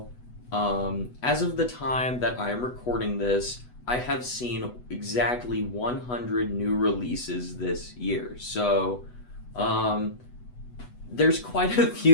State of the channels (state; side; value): late; right; 8.1 ms